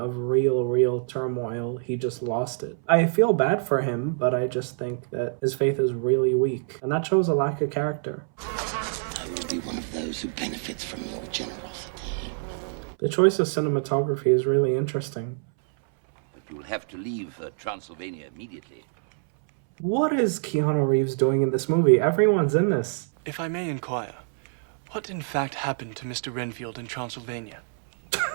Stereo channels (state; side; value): silent; left; 61 dB below the other